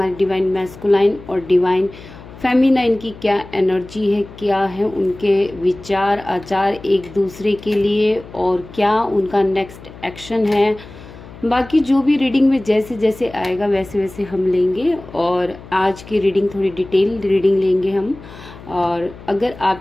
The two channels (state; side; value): noise; left; hum, 18 dB below the sound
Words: डिवाइन मैस्कुलाइन और डिवाइन फेमिनाइन की क्या एनर्जी है, क्या है उनके विचार आचार एक दूसरे के लिए और क्या उनका नेक्स्ट एक्शन है। बाकी जो भी रीडिंग में जैसे जैसे आएगा वैसे वैसे हम लेंगे और आज की रीडिंग थोड़ी डिटेल रीडिंग लेंगे हम। और अगर